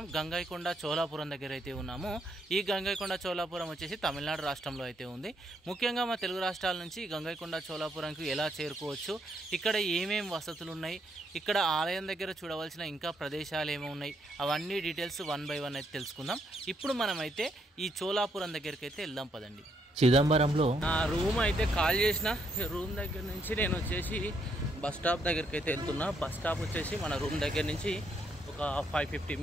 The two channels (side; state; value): both; normal; correlation 0.74